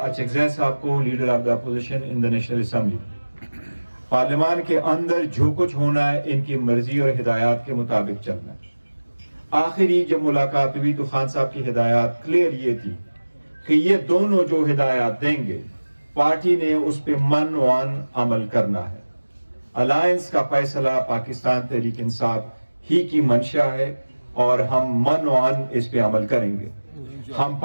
اچکزئی صاحب کو leader of the opposition in the National Assembly. پارلیمان کے اندر جو کچھ ہونا ہے ان کی مرضی اور ہدایات کے مطابق چلنا ہے. آخری جب ملاقات ہوئی تو خان صاحب کی ہدایات کلیئر یہ تھی کہ یہ دونوں جو ہدایات دیں گے پارٹی نے اس پہ من عمل کرنا ہے. الائنس کا فیصلہ پاکستان تحریک انصاف ہی کی منشا ہے, اور ہم من اس پہ عمل کریں گے. ہم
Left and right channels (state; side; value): inverted; both; correlation -1.00